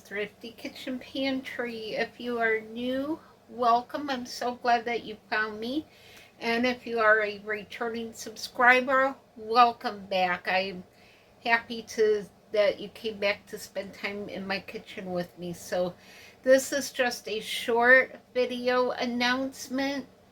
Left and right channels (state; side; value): identical; both; correlation 1.00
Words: Thrifty Kitchen Pantry. If you are new, welcome. I'm so glad that you found me. And if you are a returning subscriber, welcome back. I'm happy that you came back to spend time in my kitchen with me. So this is just a short video announcement.